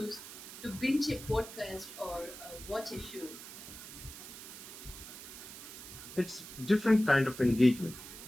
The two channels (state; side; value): noise; right; hiss, 13 dB below the sound